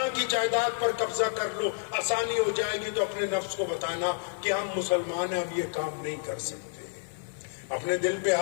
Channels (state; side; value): silent; right; digital silence